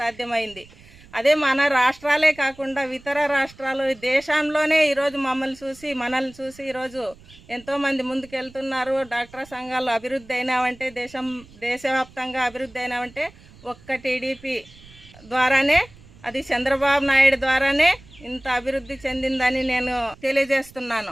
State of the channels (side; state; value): right; noise; rumble, 23 dB below the sound